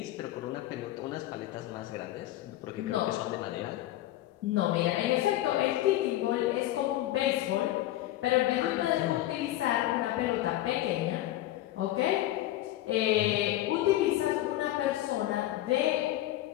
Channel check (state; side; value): quieter; right; 14.8 dB